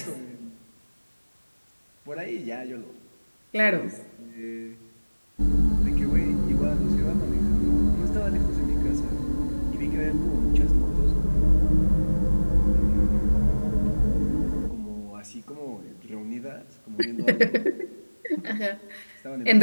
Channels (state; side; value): inverted; both; correlation -1.00